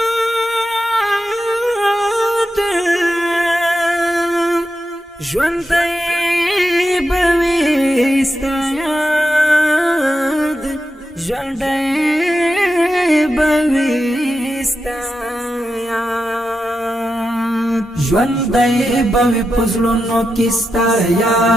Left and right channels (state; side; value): normal; both; correlation 0.88